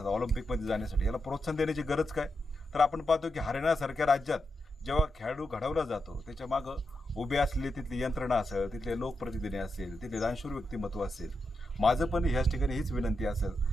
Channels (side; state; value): both; normal; correlation 0.86